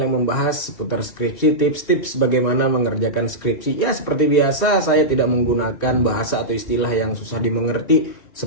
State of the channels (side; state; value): right; late; 2.8 ms